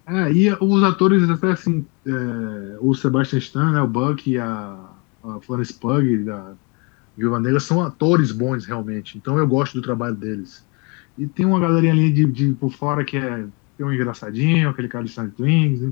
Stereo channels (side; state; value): right; quieter; 31.1 dB